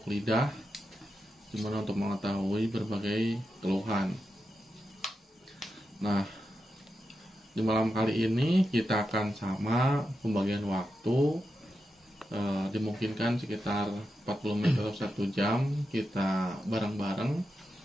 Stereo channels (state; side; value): normal; both; correlation 0.88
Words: lidah, gimana untuk mengetahui berbagai keluhan. Nah, di malam kali ini kita akan sama pembagian waktu, dimungkinkan sekitar 40 menit atau 1 jam kita bareng-bareng